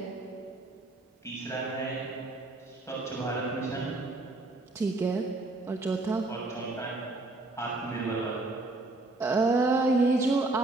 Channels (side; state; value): left; quieter; 3.0 dB